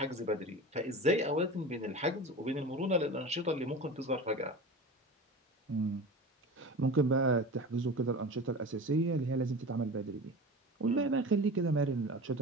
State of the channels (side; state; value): both; normal; correlation 0.32